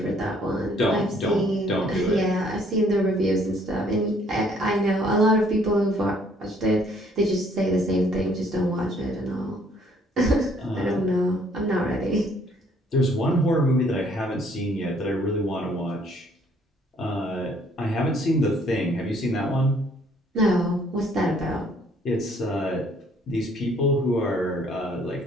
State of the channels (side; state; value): both; normal; correlation 0.63